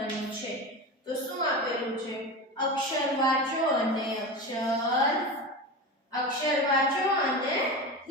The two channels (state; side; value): normal; both; correlation 0.25